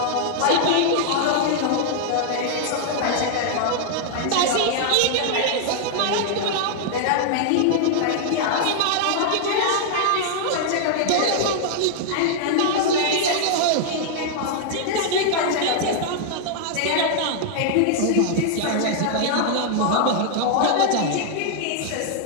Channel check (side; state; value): both; different; correlation -0.01